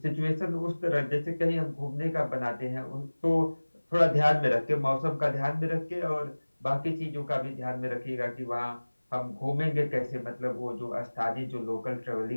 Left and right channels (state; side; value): inverted; both; correlation -1.00